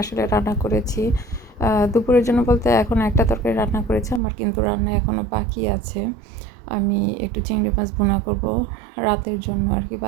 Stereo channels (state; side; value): drops out; left; at 4.2 s